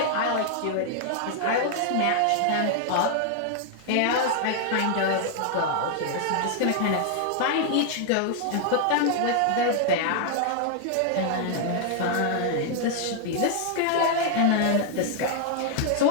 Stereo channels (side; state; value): both; different; correlation 0.00